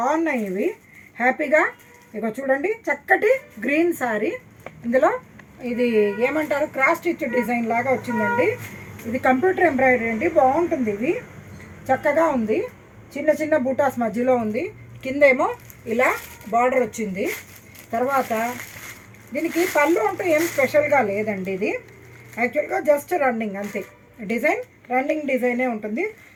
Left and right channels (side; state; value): both; identical; correlation 1.00